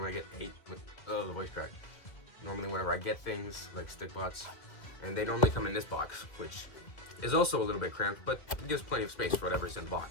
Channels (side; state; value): right; late; 1.8 ms